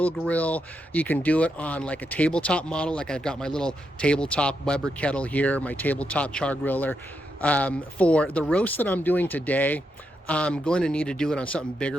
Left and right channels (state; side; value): normal; both; correlation 0.83